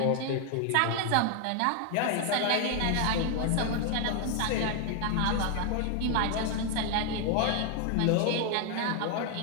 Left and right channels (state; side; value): different; both; correlation 0.00